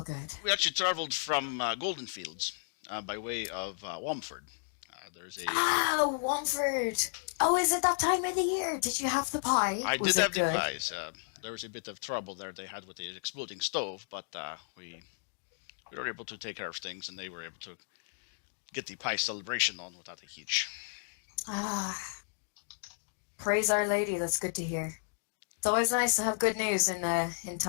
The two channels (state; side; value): silent; right; digital silence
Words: good. We actually traveled from Golden Fields by way of Womford. There's a. Womford. Oh, is it that time of the year? Did you have the pie? I Was did it have the good? pies. There was a bit of trouble there they had with the exploding stove, but we were able to take care of things, and they were able to get the pie celebration on without a hitch. Praise Our Lady. That's good to hear. It's always nice to have good news in